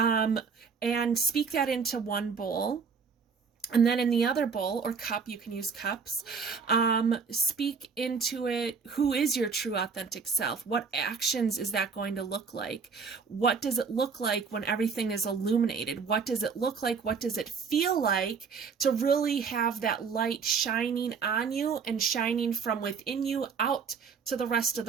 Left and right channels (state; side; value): quieter; left; 5.6 dB